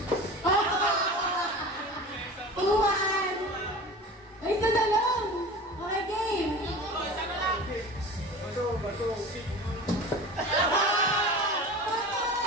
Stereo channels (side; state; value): both; normal; correlation 0.35